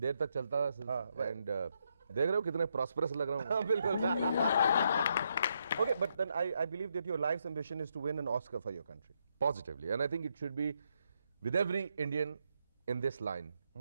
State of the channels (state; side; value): inverted; both; correlation -0.78